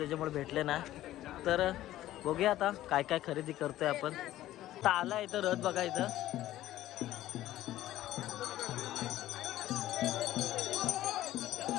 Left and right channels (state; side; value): quieter; right; 14.4 dB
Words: भेटले ना. तर बघूया आता काय काय खरेदी करतोय आपण. आता आला इथं रथ बघा इथं.